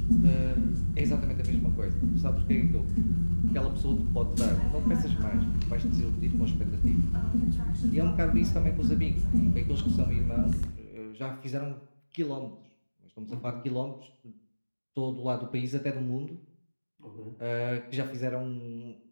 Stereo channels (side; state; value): both; inverted; correlation -1.00